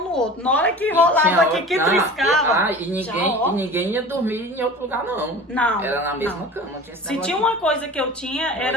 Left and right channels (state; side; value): normal; both; correlation 0.38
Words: no outro. Na hora que rolava aqui, que triscava. E ninguém ia dormir em outro lugar, não. Não. Era na mesma cama. Não tinha se tinha uma coisa que eu tinha,